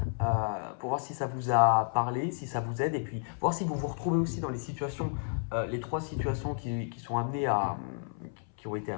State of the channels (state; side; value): silent; right; 57 dB below the other